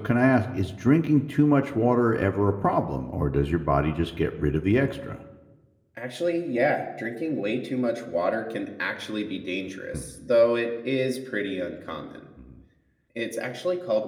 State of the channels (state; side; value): identical; both; correlation 1.00